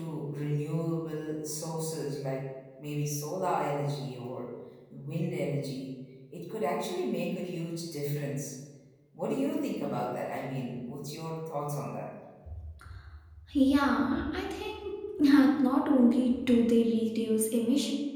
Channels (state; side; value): identical; both; correlation 1.00